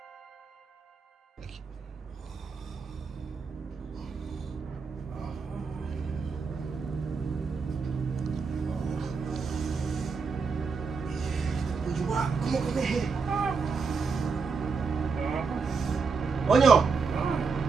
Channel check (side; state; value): left; quieter; 5.0 dB